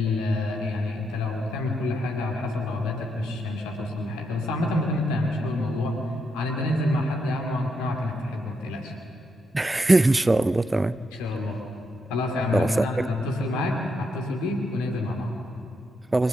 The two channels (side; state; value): both; normal; correlation 0.81